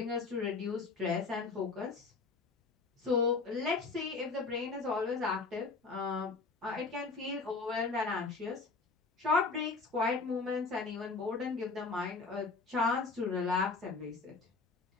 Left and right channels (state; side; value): quieter; right; 4.2 dB